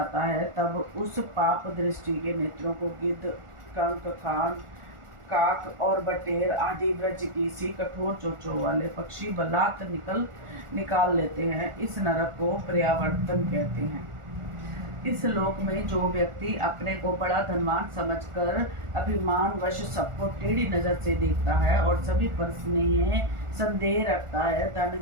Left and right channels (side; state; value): left; late; 1.4 ms